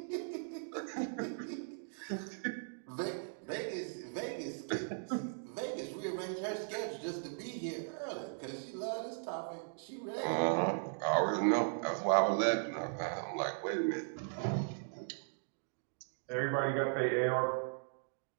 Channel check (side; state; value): left; silent; digital silence